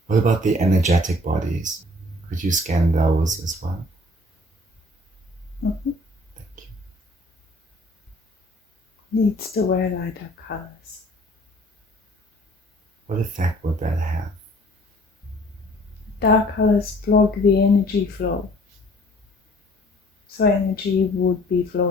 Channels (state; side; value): normal; both; correlation 0.54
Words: What about the energetic bodies? Could you scan those as well? Mm-hmm. Thank you. Needs to wear lighter colors. What effect would that have? Dark colors block the energy flow. So energy would be